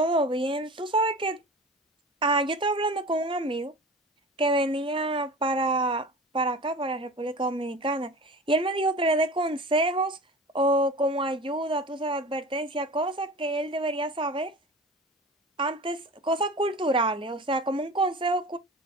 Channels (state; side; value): normal; both; correlation 0.36